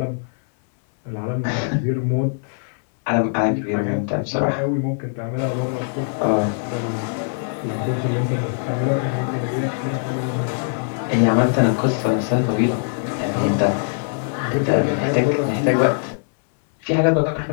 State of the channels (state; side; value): silent; right; 62 dB below the other